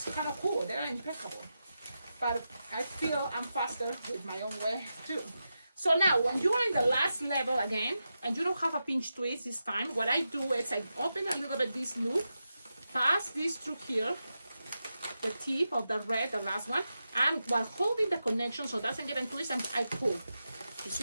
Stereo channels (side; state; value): both; inverted; correlation -0.90